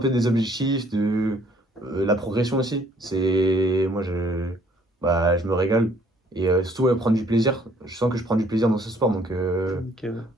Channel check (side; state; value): both; normal; correlation 0.62